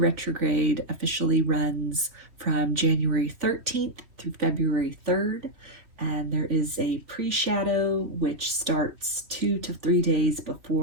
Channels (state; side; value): late; left; 3.1 ms